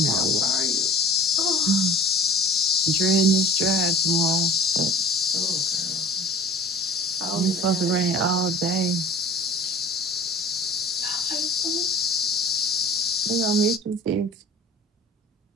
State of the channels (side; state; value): both; normal; correlation 0.42